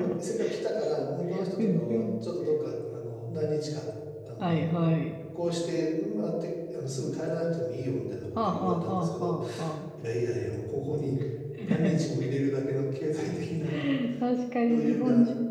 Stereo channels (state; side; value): identical; both; correlation 1.00